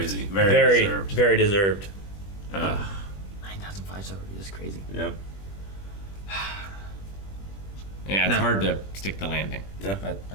Crazy. Very deserved. Very deserved. 9,000 5-star reviews is crazy. Yep. Yeah, it's hard to stick the landing. Yeah. But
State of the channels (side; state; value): right; late; 20 ms